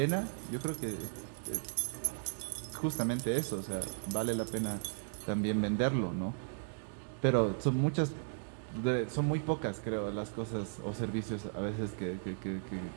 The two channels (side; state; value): left; silent; digital silence